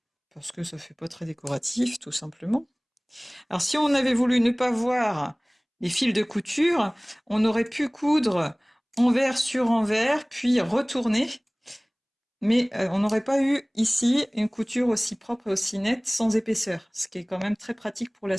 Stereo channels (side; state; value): both; identical; correlation 1.00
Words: parce que ça fait pas très décoratif, tout simplement. Alors si on avait voulu ne pas voir les fils de couture, on aurait pu coudre envers sur envers, puis retourner. Mais on n'aurait pas eu ici une couture aussi propre et aussi nette sans épaisseur, ce qui est quand même très pratique pour la